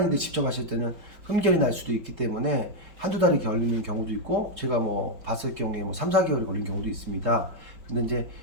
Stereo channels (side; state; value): left; late; 4.8 ms